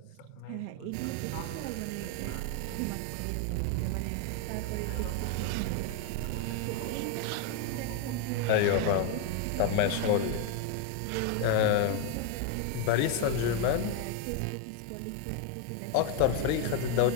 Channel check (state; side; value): different; both; correlation 0.01